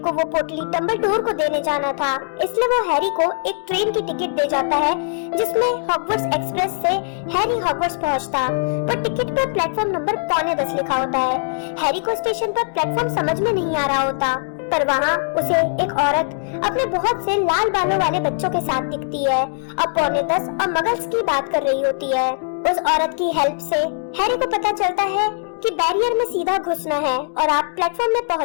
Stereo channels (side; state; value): right; silent; 59 dB below the other